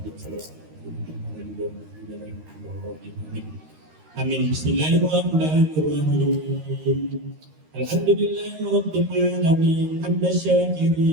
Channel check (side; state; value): left; late; 13 ms